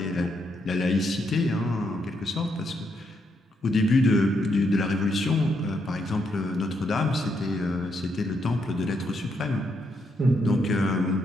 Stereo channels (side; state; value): both; normal; correlation 0.78